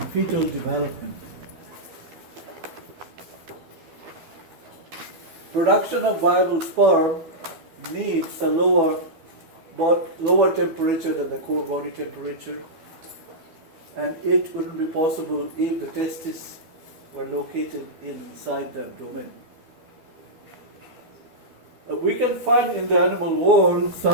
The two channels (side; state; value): left; late; 12 ms